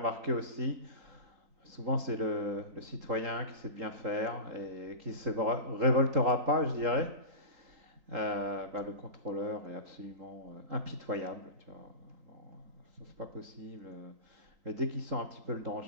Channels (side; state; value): left; late; 3.7 ms